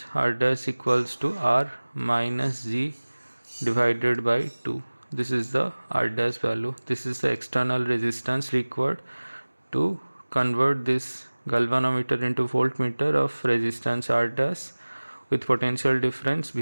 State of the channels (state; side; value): inverted; both; correlation -1.00